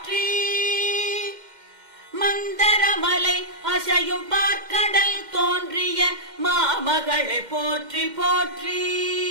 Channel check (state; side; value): late; left; 2.1 ms